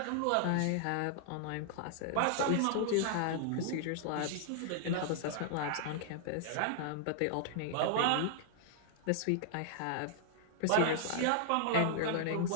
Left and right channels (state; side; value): different; both; correlation -0.01